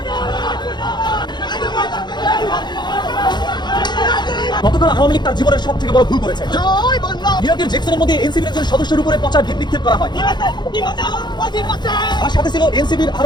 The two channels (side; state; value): right; late; 0.21 ms